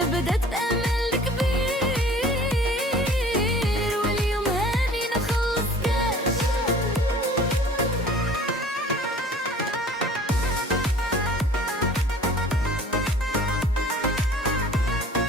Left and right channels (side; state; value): both; normal; correlation 0.49